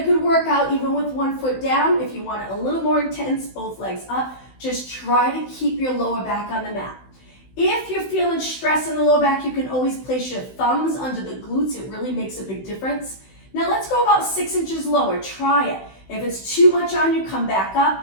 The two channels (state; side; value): late; right; 16 ms